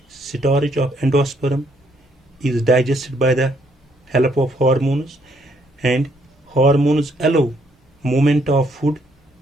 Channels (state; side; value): normal; both; correlation 0.70